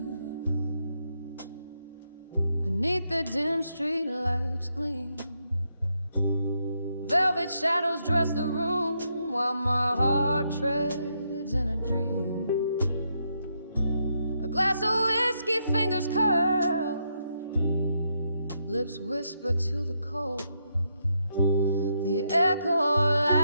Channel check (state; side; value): inverted; both; correlation -0.79